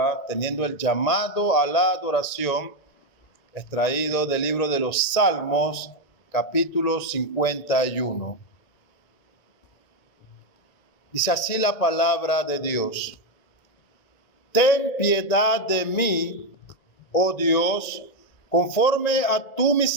teniendo el llamado a la adoración extraído del libro de los Salmos, capítulo 51. Dice así la palabra de Dios: Ten piedad de mí, oh Dios, conforme a tu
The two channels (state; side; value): late; right; 1.9 ms